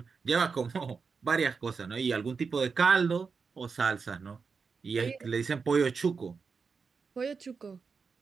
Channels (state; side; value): quieter; left; 5.2 dB